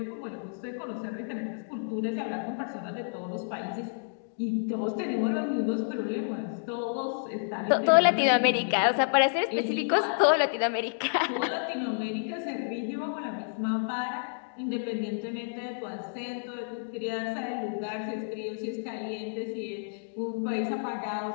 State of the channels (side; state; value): right; silent; digital silence